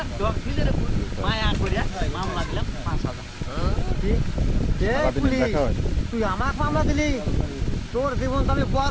ডগ দিলে রে মায়া করিয়া মামলা দিলাম 5,000। তুই আমাকে মামলা দিলি, তোর জীবন তো আমি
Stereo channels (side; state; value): both; identical; correlation 1.00